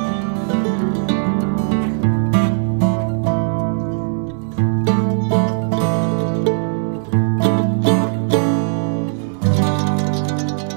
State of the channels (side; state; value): left; silent; digital silence